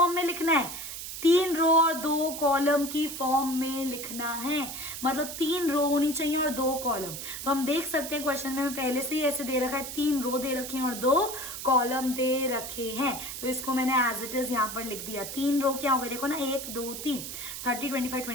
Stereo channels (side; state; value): right; noise; hiss, 8 dB below the sound